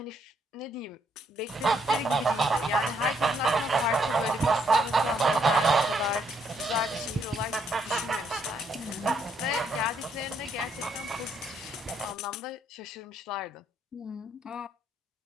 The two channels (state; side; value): normal; both; correlation 0.72